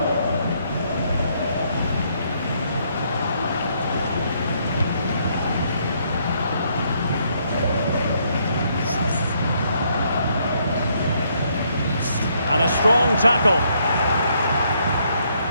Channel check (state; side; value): inverted; both; correlation -0.71